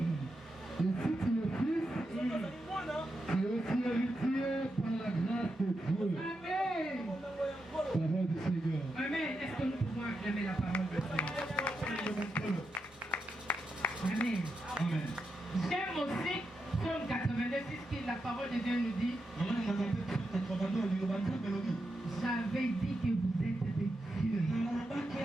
Et si tu es fils, tu es aussi héritier par la grâce de Dieu. Amen. Parole du Seigneur. Amen. Est-ce que nous pouvons acclamer la parole de Dieu? Amen. Amen. J'aime aussi Psaume 82, qui la parole de Dieu nous dit. J'avais dit que vous êtes des dieux,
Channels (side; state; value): both; normal; correlation 0.86